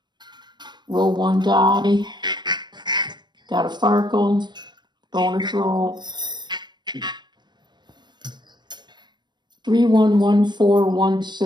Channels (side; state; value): left; late; 0.21 ms